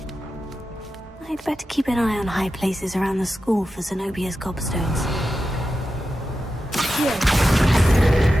I'd better keep an eye on high places around the school for Zenobia's gobstones.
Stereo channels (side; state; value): both; normal; correlation 0.91